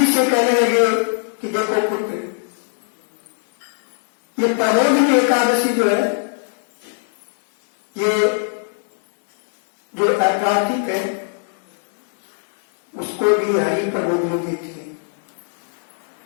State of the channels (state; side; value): silent; right; digital silence